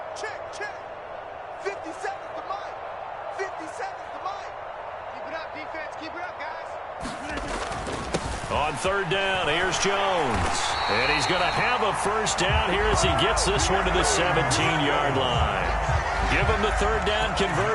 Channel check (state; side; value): identical; both; correlation 1.00